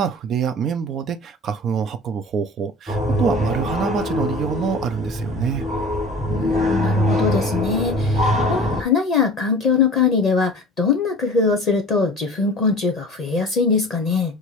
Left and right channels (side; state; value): both; normal; correlation 0.40